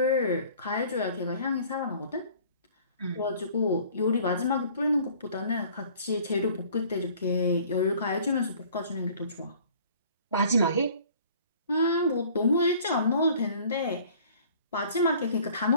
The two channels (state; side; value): inverted; both; correlation -0.52